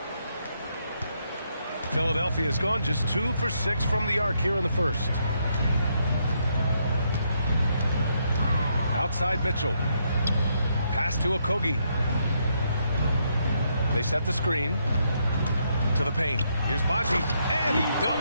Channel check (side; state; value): both; inverted; correlation -0.76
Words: Philadelphia has gone just 2 for 6 from the arc here in the first. Outside Mitchell. Pass to Okogie. They set the screen to the paint. Here's Baji, and he